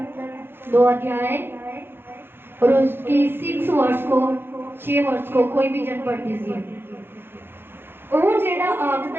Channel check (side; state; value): left; late; 0.10 ms